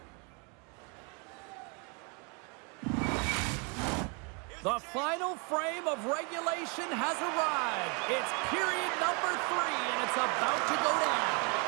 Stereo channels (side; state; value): left; quieter; 33.9 dB